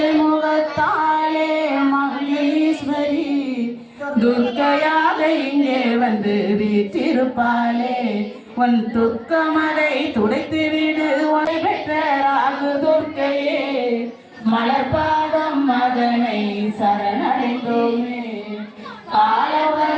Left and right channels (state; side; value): identical; both; correlation 1.00